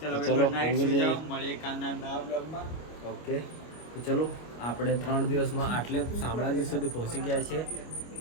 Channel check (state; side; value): late; right; 25 ms